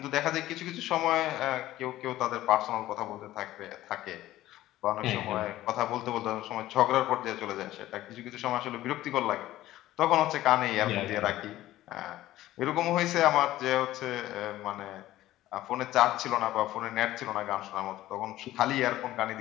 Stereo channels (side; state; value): right; quieter; 15.1 dB